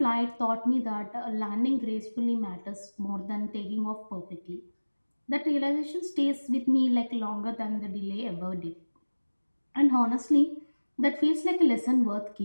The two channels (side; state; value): both; inverted; correlation -1.00